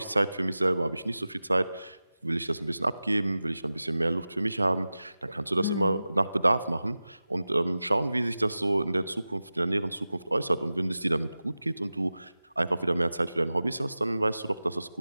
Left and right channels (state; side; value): inverted; both; correlation -0.95